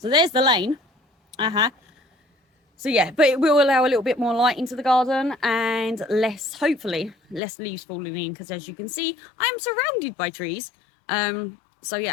there's the lane. So yeah, but it will allow a little bit more light into the garden and hopefully less leaves falling in, because as you can see, I'm surrounded by trees. So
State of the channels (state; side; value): drops out; right; at 7.4 s